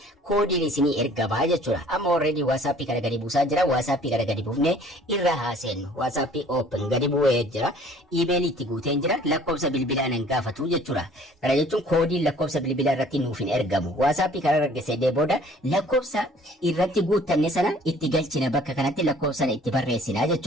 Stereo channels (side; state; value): both; normal; correlation 0.54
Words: koodiin isinii ergamaa jechuudha. Amma already WhatsAppii kana gadi buusaa jira. WhatsAppii kana gadi buufnee irra haaseennu. WhatsAppii open gadi bu'ee jira. Iimeelii itti guuteen jira. Lakkoofsa bilbilaa nan gaafatu jechuudha. Kana jechuun koodiin lakkoofsa bilbilaa irratti nuuf hin ergamu. WhatsAppii kana argisiisee booda lakkoofsa irratti guuttanne sana itti galchina bakka kanatti lakkoofsa sana itti barreessina